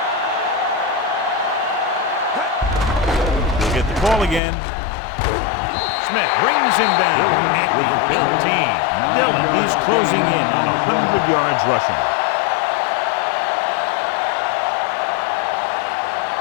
He'll get the call again. Smith brings him down at the 18. Dillon, he's closing in on 100 yards rushing.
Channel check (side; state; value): right; drops out; at 4.4 s